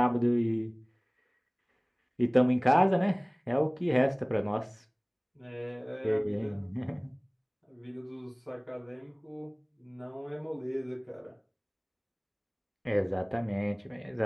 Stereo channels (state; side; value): identical; both; correlation 1.00